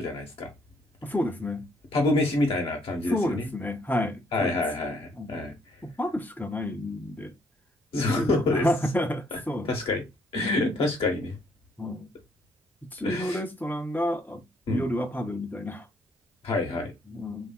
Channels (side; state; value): both; normal; correlation 0.67